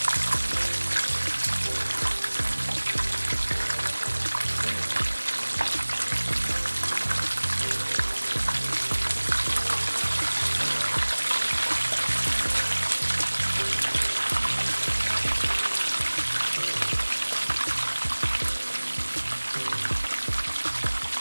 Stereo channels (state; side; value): inverted; both; correlation -1.00